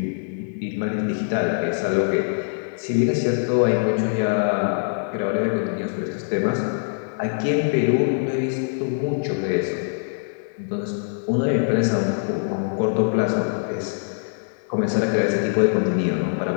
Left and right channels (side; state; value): right; silent; digital silence